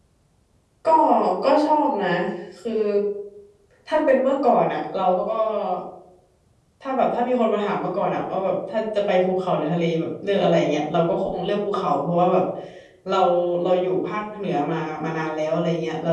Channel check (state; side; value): identical; both; correlation 1.00